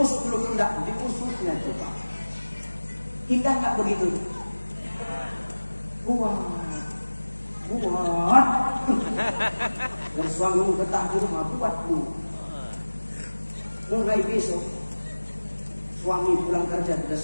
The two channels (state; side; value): inverted; both; correlation -1.00